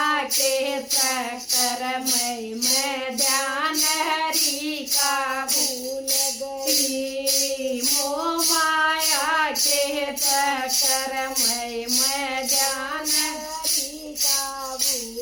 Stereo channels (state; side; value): identical; both; correlation 1.00